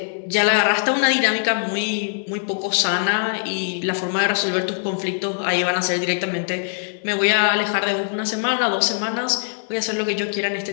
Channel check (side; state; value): right; silent; 64 dB below the other